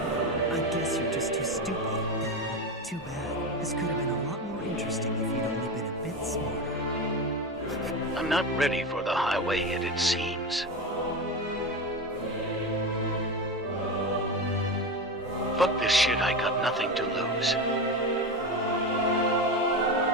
I guess you're just too stupid. Too bad. This could have been a lot more interesting if you'd only been a bit smarter. I'm not ready for the highway yet, it seems. Fuck this shit, I got nothing to lose.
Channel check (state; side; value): normal; both; correlation 0.20